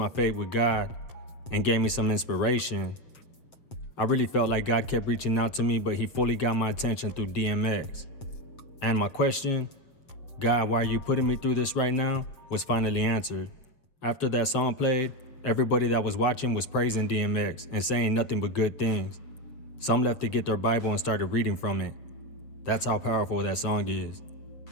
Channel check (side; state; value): right; late; 7.7 ms